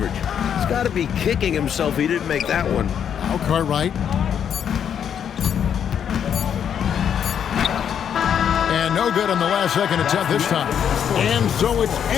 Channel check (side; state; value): right; quieter; 8.5 dB